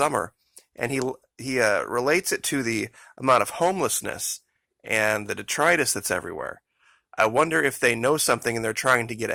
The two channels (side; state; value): both; identical; correlation 1.00